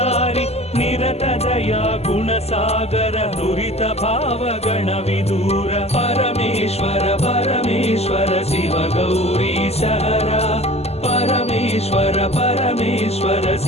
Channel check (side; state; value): right; late; 0.30 ms